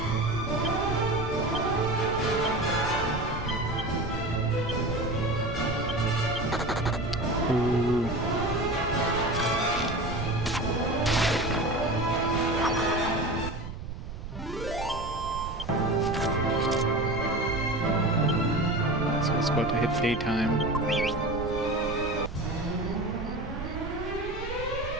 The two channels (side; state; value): right; noise; rumble, 9 dB below the sound